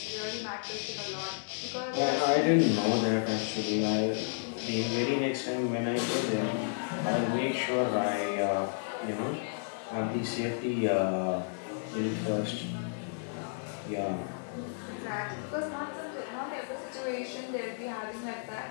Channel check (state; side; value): silent; right; digital silence